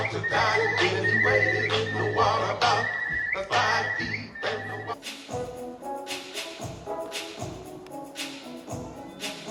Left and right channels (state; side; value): identical; both; correlation 1.00